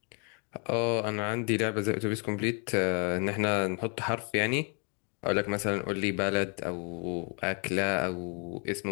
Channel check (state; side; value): quieter; right; 37.5 dB